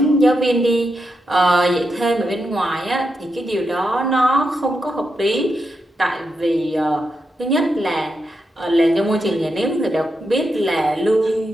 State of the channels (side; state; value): both; normal; correlation 0.85